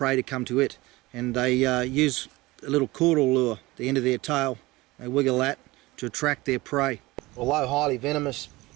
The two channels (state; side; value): quieter; left; 20.7 dB